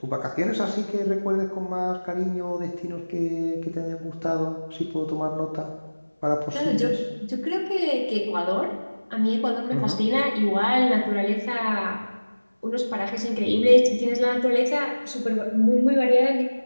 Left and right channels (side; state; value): both; inverted; correlation -1.00